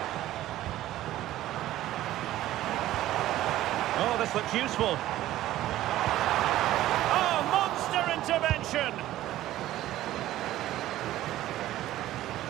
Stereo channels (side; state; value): left; quieter; 14.4 dB